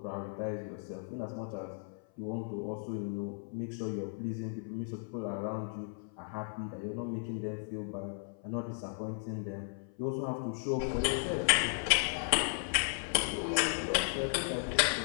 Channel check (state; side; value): silent; right; 54 dB below the other